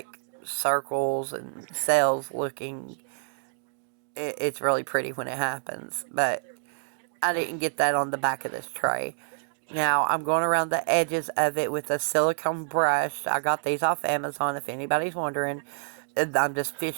circles and cells looking. It's really pretty when it happens, but I didn't get that on the back of this tray. Now I'm going around the edges of it with a silicone brush. I got these off Amazon if anybody's wondering. I'm just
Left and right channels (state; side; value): silent; left; digital silence